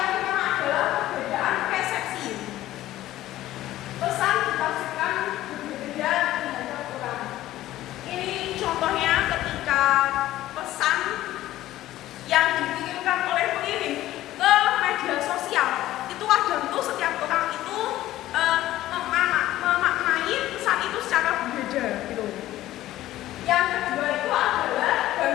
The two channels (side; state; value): right; quieter; 14.8 dB